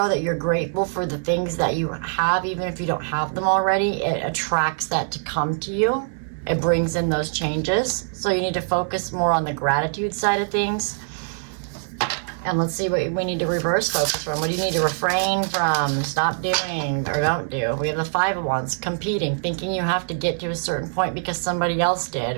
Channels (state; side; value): silent; left; 57 dB below the other